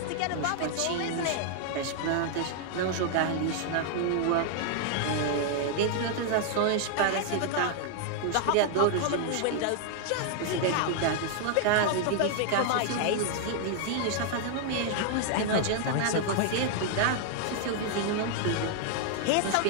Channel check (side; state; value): both; different; correlation 0.00